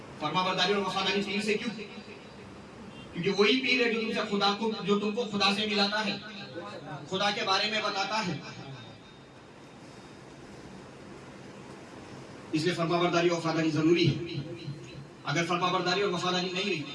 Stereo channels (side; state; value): both; identical; correlation 1.00